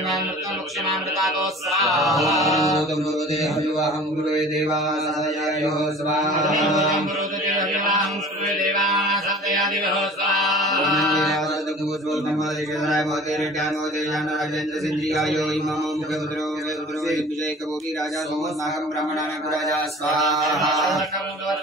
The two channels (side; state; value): both; normal; correlation 0.44